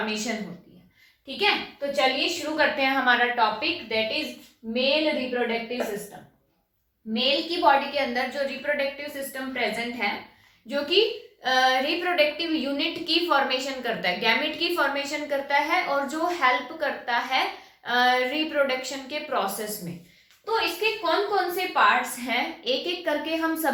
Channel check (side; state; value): both; identical; correlation 1.00